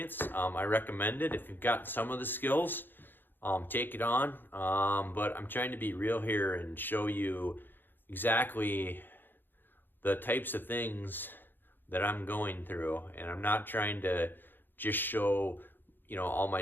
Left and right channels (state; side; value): late; right; 0.095 ms